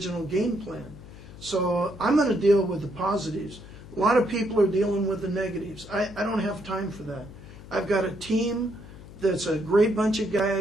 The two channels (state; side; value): noise; left; hum, 17 dB below the sound